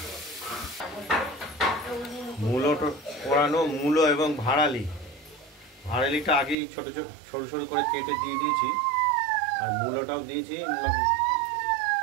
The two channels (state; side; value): drops out; left; at 6.6 s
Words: মূলো পোড়ানো মূলো এবং ভাড়ালিটা আগেই ছোট ছোট সরু সরু করে কেটে দিয়ে দিয়েছি আর মূলোটাও দিয়েছি